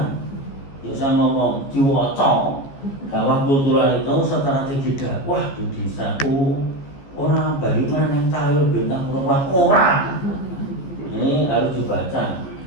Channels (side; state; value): right; late; 14 ms